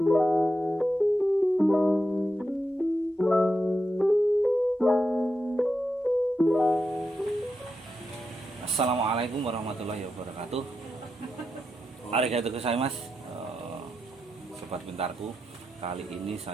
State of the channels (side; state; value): both; normal; correlation 0.86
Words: warahmatullahi wabarakatuh. Arigatou gozaimasu, sobat pintarku. Kali ini